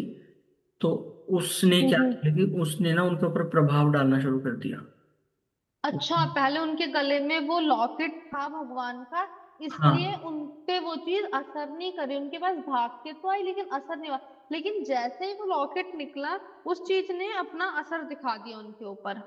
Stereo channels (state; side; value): identical; both; correlation 1.00